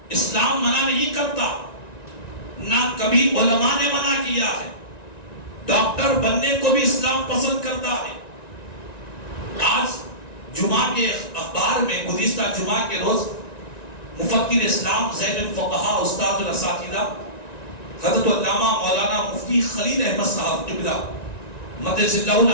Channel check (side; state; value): right; late; 1.9 ms